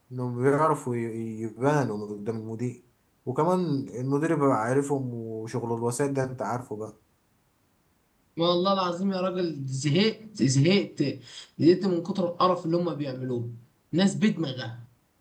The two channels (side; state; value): both; identical; correlation 1.00